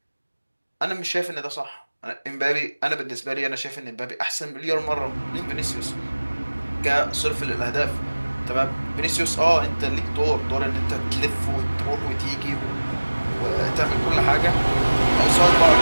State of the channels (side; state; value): both; inverted; correlation -1.00